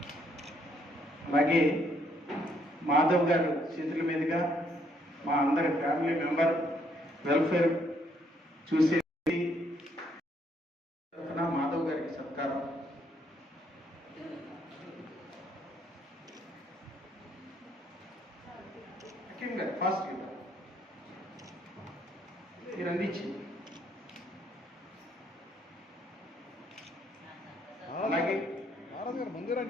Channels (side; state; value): both; normal; correlation 0.70